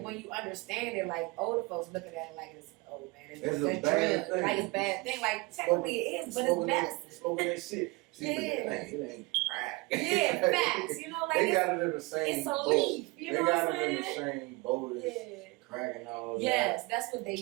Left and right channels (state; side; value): quieter; left; 25.1 dB